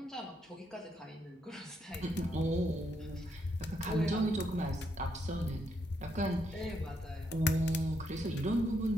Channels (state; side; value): normal; both; correlation 0.77